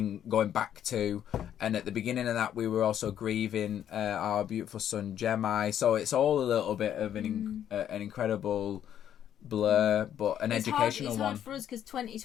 going back to. And at the beginning of that, we were also grieving our beautiful son Jemai. So it's all a little bit of an incredible blur, but an educational it's one. hard for us because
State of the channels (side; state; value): right; quieter; 10.1 dB